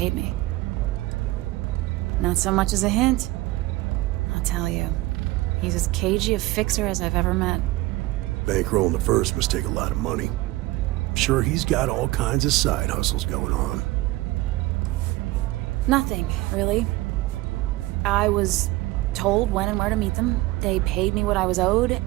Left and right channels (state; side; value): quieter; left; 19.1 dB